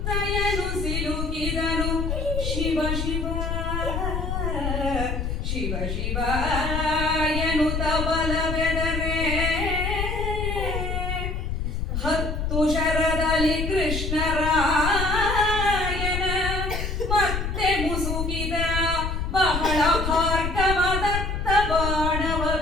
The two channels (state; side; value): noise; left; rumble, 2 dB below the sound